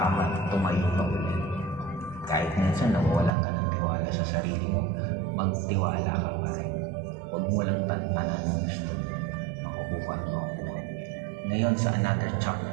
man, tumayo ka ulit. Kahit minsan nawawalan ka ng tiwala sa sarili mo, magtiwala ka pa rin. Huwag mo lang tantanan ang gusto. Makukuha mo ako. Ngayon sa another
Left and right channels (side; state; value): left; drops out; at 3.3 s